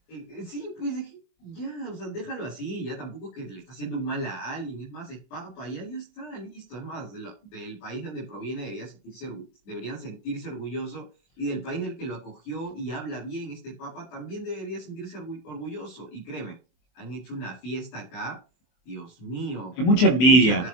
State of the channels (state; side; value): late; right; 24 ms